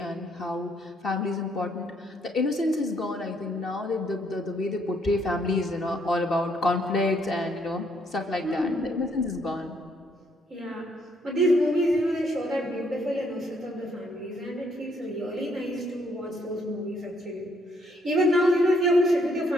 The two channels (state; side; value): normal; both; correlation 0.70